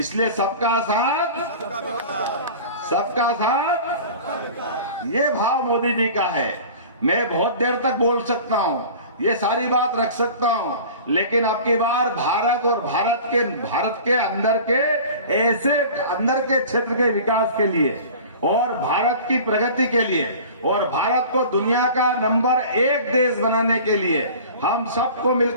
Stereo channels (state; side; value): inverted; both; correlation -0.40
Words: सबका साथ, सबका साथ, ये भाव मोदी जी का है। मैं बहुत देर तक बोल सकता हूं, ये सारी बात रख सकता हूं, लेकिन अब की बार भारत और भारत के अंदर के ऐसे अंदर के क्षेत्र के विकास के लिए और भारत की प्रगति के लिए और भारत को दुनिया का नंबर 1 देश बनाने के लिए हम सबको